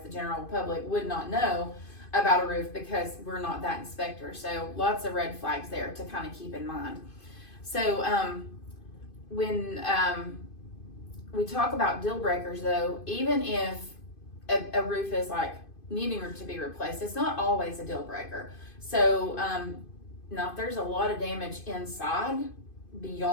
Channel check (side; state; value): right; late; 2.5 ms